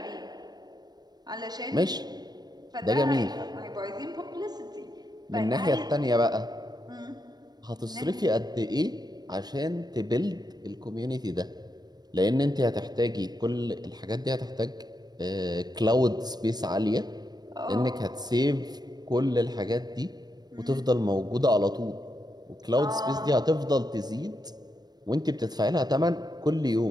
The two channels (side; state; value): left; late; 0.19 ms